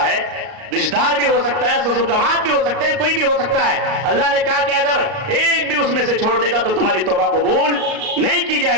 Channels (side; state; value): left; late; 38 ms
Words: रिश्तेदार भी हो सकता है, ससुर दामाद भी हो सकते हैं, कोई भी हो सकता है। अल्लाह ने कहा कि अगर एक भी उसमें से छोड़ देगा तो तुम्हारी तौबा कबूल नहीं की